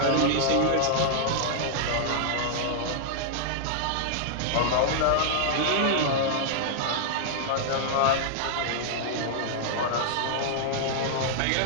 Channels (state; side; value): different; both; correlation -0.01